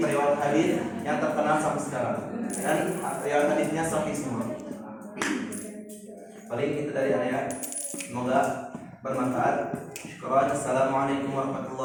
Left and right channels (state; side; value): identical; both; correlation 1.00